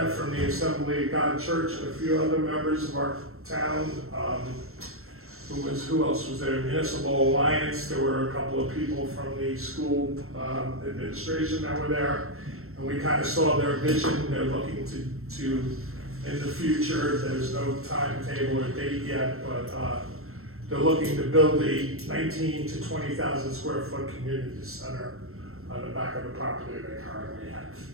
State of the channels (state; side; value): late; left; 0.62 ms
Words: from the Assembly of God Church and a few other members of our town. Who else was there? Municipal Alliance. There were a couple of people from the school administration that were there. And we kind of saw their vision. They're looking to in the future, there's no timetable or date yet, but they're looking to build a 19 to 20,000 square foot community center on the back of the property they currently have.